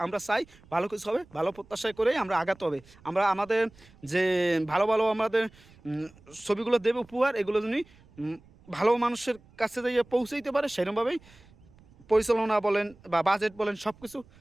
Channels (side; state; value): right; noise; rumble, 26 dB below the sound